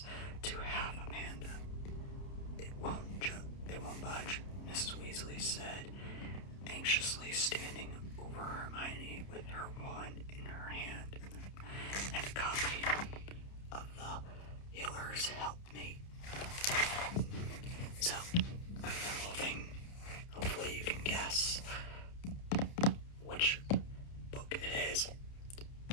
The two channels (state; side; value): late; right; 30 ms